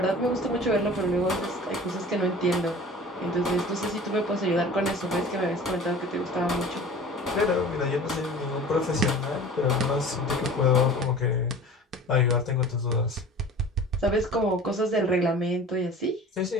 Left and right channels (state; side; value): normal; both; correlation 0.41